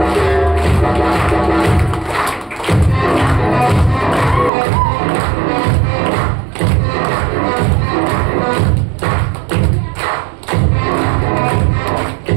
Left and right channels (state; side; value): drops out; left; at 4.5 s